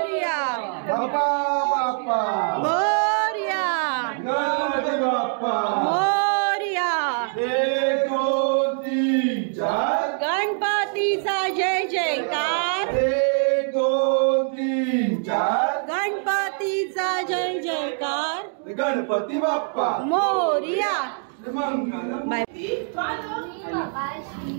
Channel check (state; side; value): silent; left; 58 dB below the other